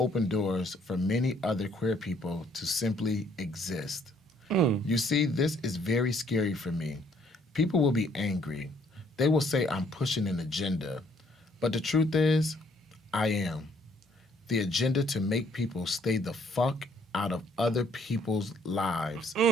doors for many other queer people to simply exist. You see, this is very scary for me. People will be angry. They will say I'm pushing an agenda. But the truth is, I am. The agenda to make people stay the fuck out of other people's lives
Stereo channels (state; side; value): normal; both; correlation 0.65